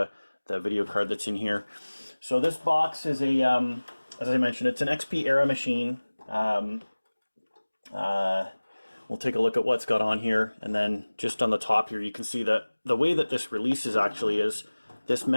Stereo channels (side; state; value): both; inverted; correlation -1.00